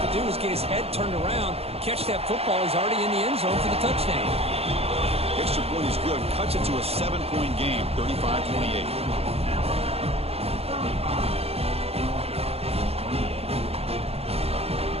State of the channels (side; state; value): left; late; 0.29 ms